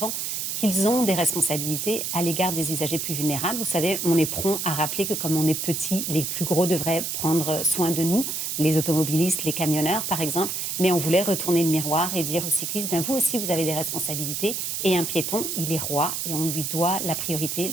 qu'ils ont des responsabilités à l'égard des usagers plus vulnérables. Vous savez, on est prompt à rappeler que comme on est petit, les plus gros devraient prendre soin de nous, les automobilistes, les camionneurs par exemple, mais on voulait retourner le miroir et dire aux cyclistes, ben vous aussi vous avez des responsabilités et un piéton, il est roi et on lui doit la priorité,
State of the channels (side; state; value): right; noise; hiss, 3 dB below the sound